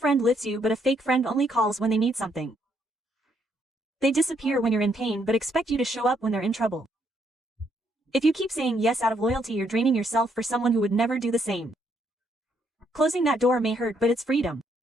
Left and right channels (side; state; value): both; normal; correlation 0.72